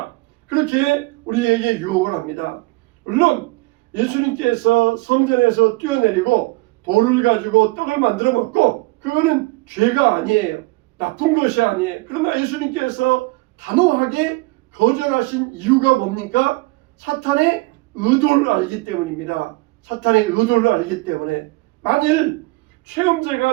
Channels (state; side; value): quieter; left; 22.9 dB